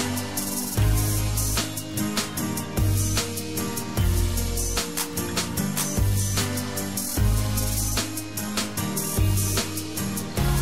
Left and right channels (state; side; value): identical; both; correlation 1.00